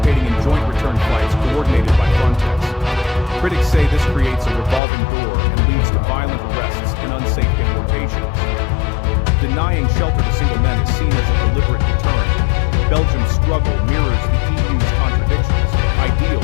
in joint return flights coordinated by Frontex. Critics say this creates a revolving door and leads to violent arrests and unsafe deportations. Denying shelter to single men is seen as a deliberate deterrent. Belgium's struggle mirrors the EU's contradictions, ideals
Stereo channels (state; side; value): drops out; right; at 4.8 s